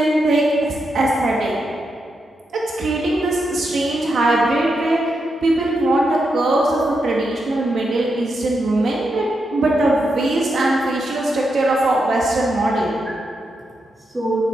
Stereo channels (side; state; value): both; normal; correlation 0.84